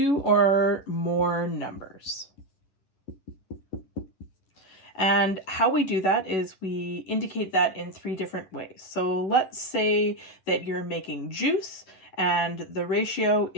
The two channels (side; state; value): right; late; 11 ms